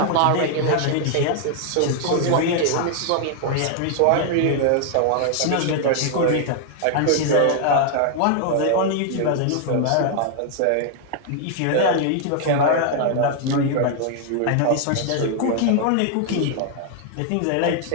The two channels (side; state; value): both; different; correlation 0.00